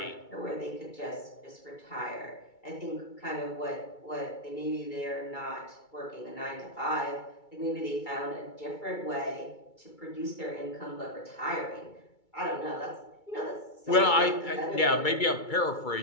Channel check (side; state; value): right; late; 2.3 ms